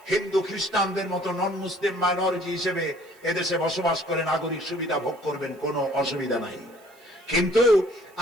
হিন্দু খ্রিস্টানদের মতো নন মুসলিম মাইনরিটি হিসেবে এদেশে বসবাস করে নাগরিক সুবিধা ভোগ করবেন, কোনো অসুবিধা নাই। কিন্তু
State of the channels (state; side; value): noise; right; hiss, 29 dB below the sound